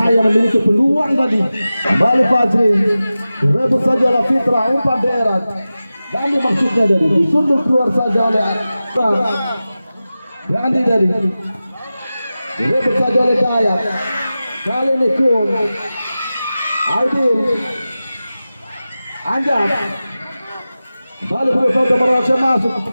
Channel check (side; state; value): both; inverted; correlation -0.95